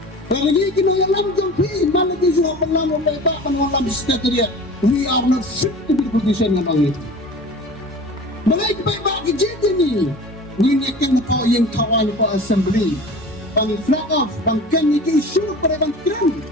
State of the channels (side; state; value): both; normal; correlation 0.38